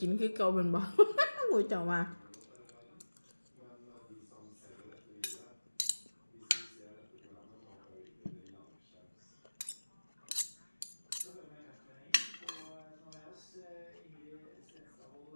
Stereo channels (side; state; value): both; inverted; correlation -1.00